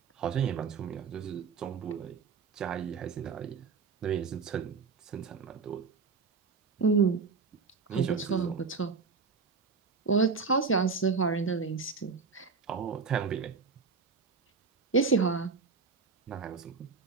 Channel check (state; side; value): quieter; left; 5.1 dB